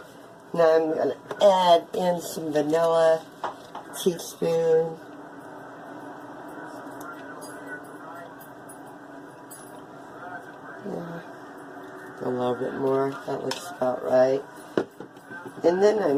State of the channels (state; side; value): identical; both; correlation 1.00